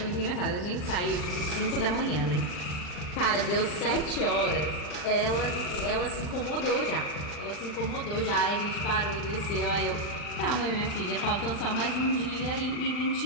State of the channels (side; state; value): right; late; 40 ms